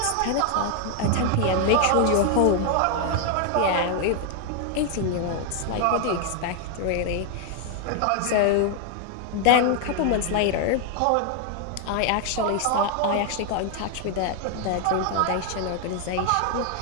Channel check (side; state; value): both; different; correlation 0.00